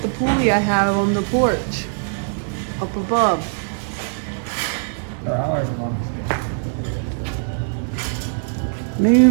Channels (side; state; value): left; silent; digital silence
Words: the pulley I have on the porch up above. Or however long it's been.